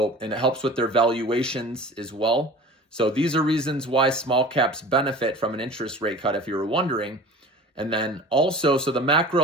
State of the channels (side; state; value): both; normal; correlation 0.40